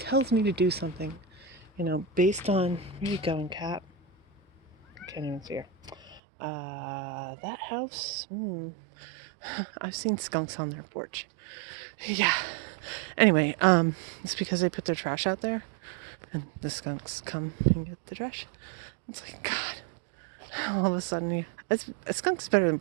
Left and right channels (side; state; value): left; drops out; at 6.2 s